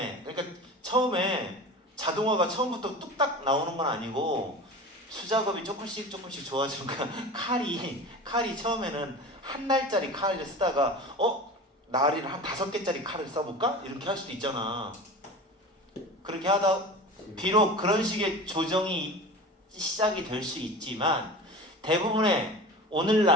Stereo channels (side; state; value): both; normal; correlation 0.34